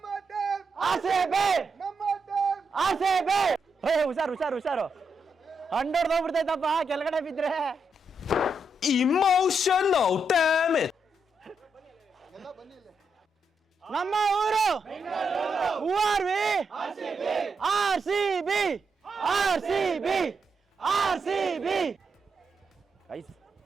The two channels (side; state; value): both; normal; correlation 0.81